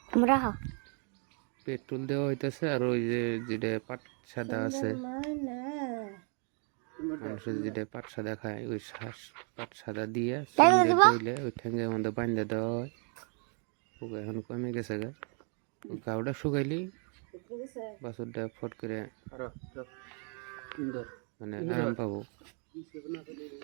পেট্রোল দেওয়া হইতেছে। আর ওই যে যেটা পাট সাদা আছে, মানুষের যেটা পাট সাদা খায়, ওই পাট সাদা দিয়ে দিলে ওই ঠ্যাঙ্গের মধ্যে বান্ধা দেওয়া হয়। পোকা এখন কমে গেছে গা। ওই গাওটা শুকাইলেই বাছুরটা ফট করে মানে আরাম পাবো।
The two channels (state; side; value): quieter; left; 39.1 dB